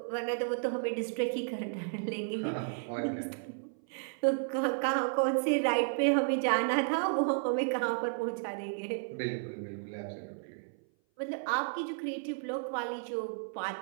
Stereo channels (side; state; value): left; silent; 56 dB below the other